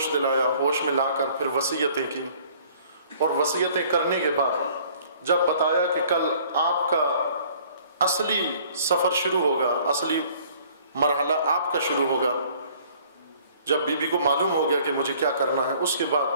دلایا، ہوش میں لا کر پھر وصیتیں کی، اور وصیتیں کرنے کے بعد جب بتایا کہ کل آپ کا اصلی سفر شروع ہوگا، اصلی مرحلہ آپ کا شروع ہوگا، جب بی بی کو معلوم ہو گیا کہ مجھے کیا کرنا ہے، اس کے بعد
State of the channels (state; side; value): inverted; both; correlation -0.55